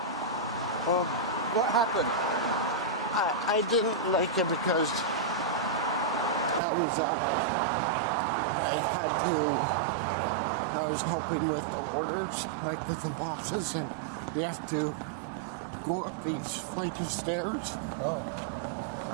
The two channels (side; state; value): left; drops out; at 6.6 s